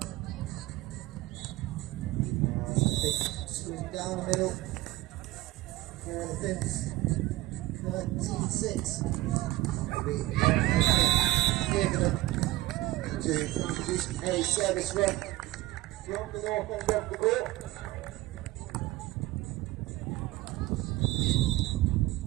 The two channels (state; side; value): quieter; left; 17.9 dB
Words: Down the middle for the Finns, 13-6. To introduce a service run from the north end of the court.